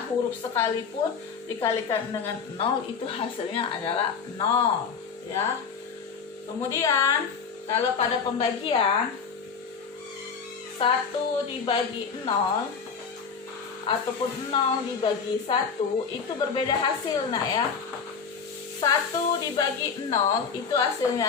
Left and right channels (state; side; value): quieter; right; 5.9 dB